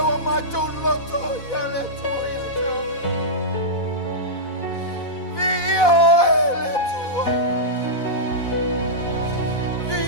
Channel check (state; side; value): late; right; 4.1 ms